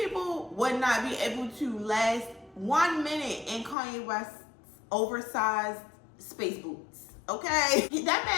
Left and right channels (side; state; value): right; drops out; at 3.8 s